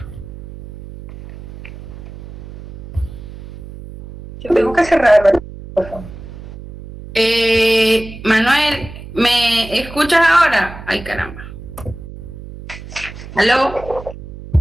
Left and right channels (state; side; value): noise; right; hum, 14 dB below the sound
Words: Yo tengo que cerrar el micrófono. Manuel, ¿me escuchas ahora? Ay, caramba. ¿Aló?